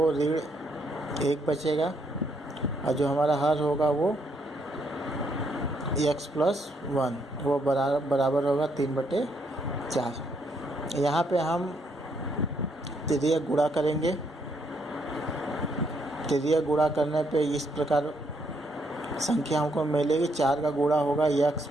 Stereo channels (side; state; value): both; normal; correlation 0.73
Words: ऋण 1 बचेगा, और जो हमारा हर होगा वो x+1 वो बराबर होगा 3/4। यहाँ पे हम तृतीयक गुणा करेंगे। तृतीयक गुणा करने पे इस प्रकार संख्या हमको मिलेगी। 4 का गुणा होगा